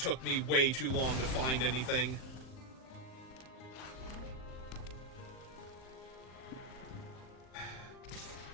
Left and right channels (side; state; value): right; late; 39 ms